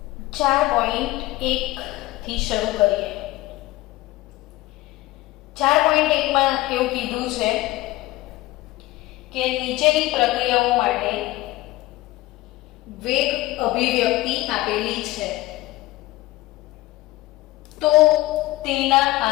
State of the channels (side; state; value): right; quieter; 18.0 dB